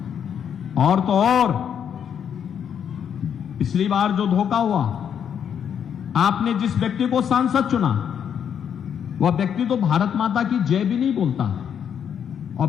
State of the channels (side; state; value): right; quieter; 8.3 dB